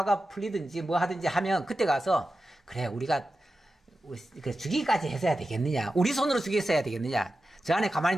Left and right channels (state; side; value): normal; both; correlation 0.92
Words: 풀리든지 뭐 하든지 하면 그때 가서 그래 우리가 죽이기까지 했어야 되겠느냐, 우리 손으로 죽였어야 되겠느냐, 저 안에 가만히